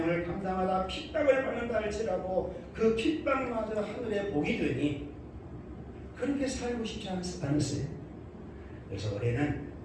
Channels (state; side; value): identical; both; correlation 1.00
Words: 감당하다 핍박을 받는다 할지라도 그 핍박마저 하늘의 복이 되니 그렇게 살고 싶지 않으세요? 그래서 올해는